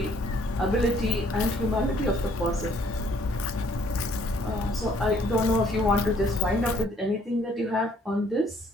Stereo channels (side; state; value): both; normal; correlation 0.62